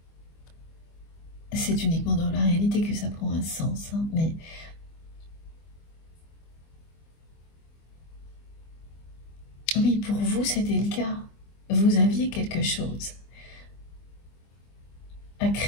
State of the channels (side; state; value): right; late; 25 ms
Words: c'est uniquement dans la réalité que ça prend un sens, hein, mais oui, pour vous, c'était le cas. Vous aviez quelque chose à